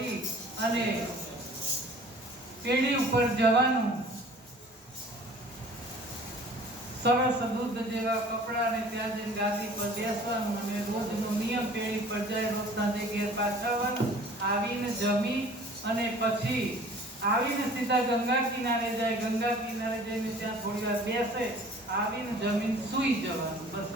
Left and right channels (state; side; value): normal; both; correlation 0.48